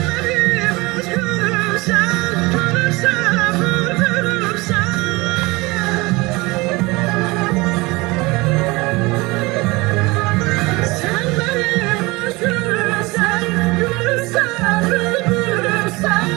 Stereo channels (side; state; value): left; quieter; 23.3 dB